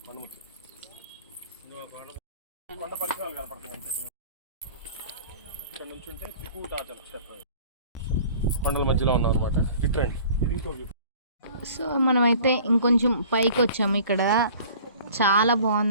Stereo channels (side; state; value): both; inverted; correlation -0.48